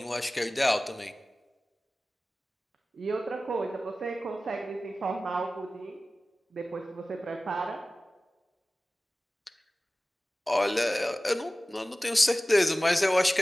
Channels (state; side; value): normal; both; correlation 0.96